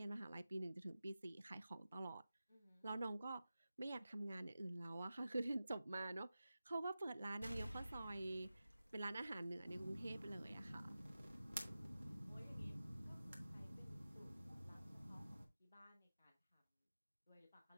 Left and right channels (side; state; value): both; inverted; correlation -0.94